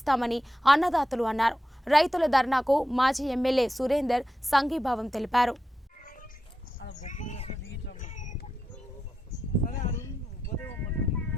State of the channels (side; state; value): both; normal; correlation 0.88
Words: అన్నదాతలు అన్నారు. రైతుల ధర్నాకు మాజీ ఎమ్మెల్యే సురేందర్ సంఘీభావం తెలిపారు.